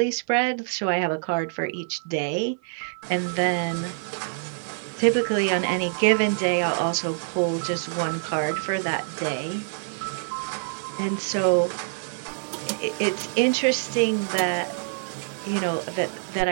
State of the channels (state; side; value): silent; left; 61 dB below the other